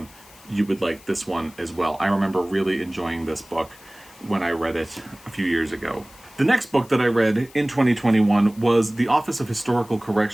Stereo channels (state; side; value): noise; left; hiss, 23 dB below the sound